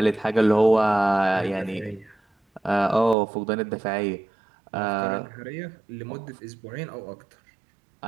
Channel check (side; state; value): left; drops out; at 3.2 s